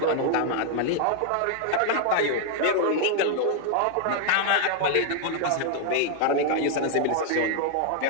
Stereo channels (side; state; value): both; different; correlation 0.00